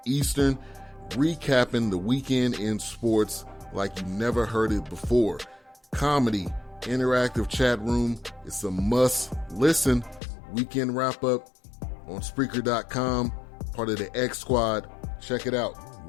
Eastern, recapping the weekend in sports like you never heard it before. Comedy, interactive chat room, it's a must-listen. Weekend wrap-up on Spreaker.com, part of the X Squad. Check it out.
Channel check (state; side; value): drops out; right; at 10.2 s